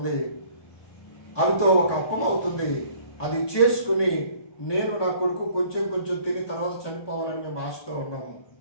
అవితో ఒక అప్పం అవుతుంది, అది చేసుకుని నేను నా కొడుకు కొంచెం కొంచెం తిని తర్వాత చనిపోవాలని మేము ఆశతో ఉన్నాము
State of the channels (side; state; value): right; late; 1.2 ms